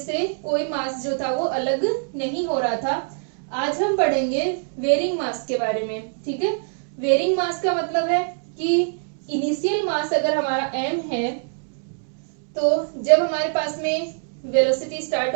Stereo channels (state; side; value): silent; left; digital silence